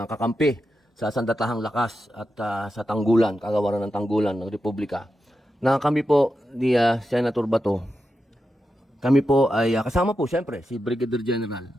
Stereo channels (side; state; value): both; normal; correlation 0.88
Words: kakampi sa Sandatahang Lakas at sa Tanggulan, Kagawaran ng Tanggulan ng Republika, na kami po ni Senator Bato, kami po ay kasama po siyempre si Brigadier General.